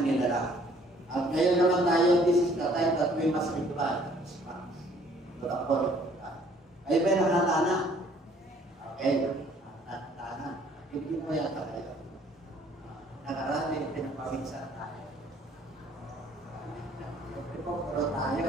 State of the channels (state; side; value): normal; both; correlation 0.59